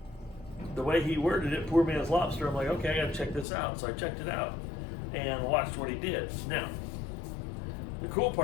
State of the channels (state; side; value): drops out; right; at 3.5 s